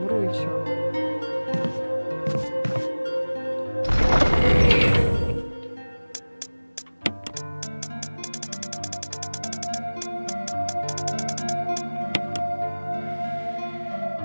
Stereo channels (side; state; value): both; inverted; correlation -1.00